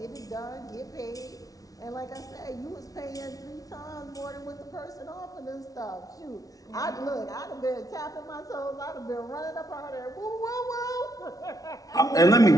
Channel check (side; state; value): right; late; 0.18 ms